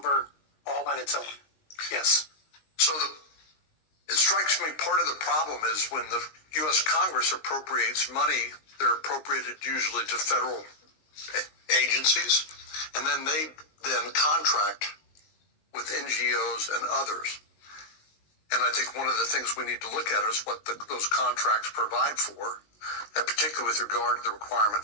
all on its own. Yes. So it strikes me part of the problem is when the U.S. Congress appropriates money, they're appropriated usually to federal agencies, and then they then contract with NGOs and others. And I think one of the things we need to look at is what those contracts provide for, and particularly with regard to the requirement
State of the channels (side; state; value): right; late; 19 ms